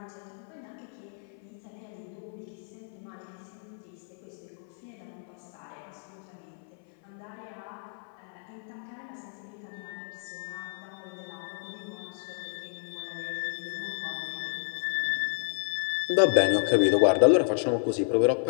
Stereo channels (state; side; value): silent; right; 57 dB below the other